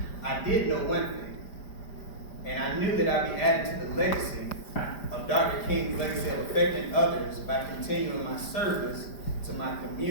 I did know one thing. And I knew that I'd be adding to the legacy of Dr. King's legacy of affecting others by continuing my service to my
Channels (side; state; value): right; late; 5.0 ms